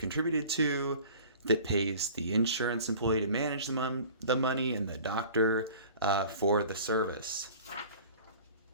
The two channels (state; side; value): inverted; both; correlation -0.45